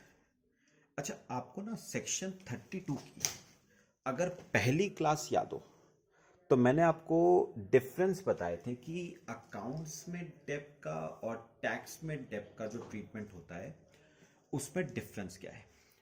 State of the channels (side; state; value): both; identical; correlation 1.00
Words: अच्छा, आपको ना सेक्शन 32 की अगर पहली क्लास याद हो तो मैंने आपको डिफरेंस बताए थे कि अकाउंट्स में डेब्ट का और टैक्स में डेब्ट का जो ट्रीटमेंट होता है उसमें डिफरेंस क्या है।